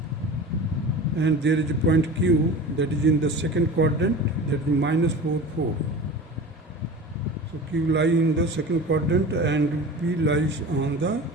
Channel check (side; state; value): both; normal; correlation 0.35